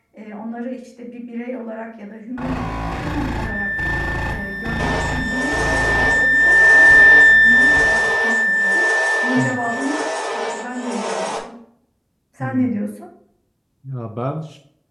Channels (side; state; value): both; identical; correlation 1.00